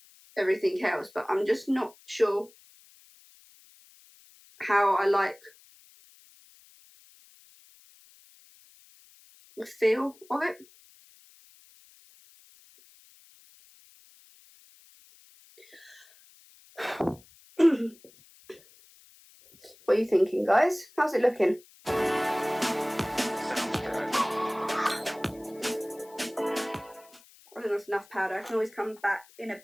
everything else, but I'm just not sure how I like the feel of it. What are you thinking, guys? How's it looking? I think that's enough powder. I can always come back in a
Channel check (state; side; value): noise; left; hiss, 26 dB below the sound